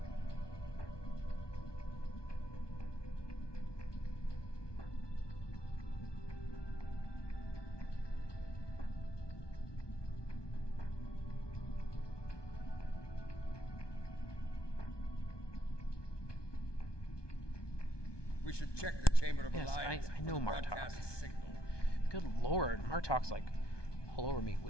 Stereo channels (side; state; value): right; late; 1.2 ms